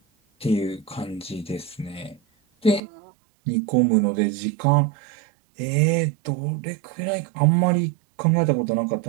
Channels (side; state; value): left; drops out; at 2.8 s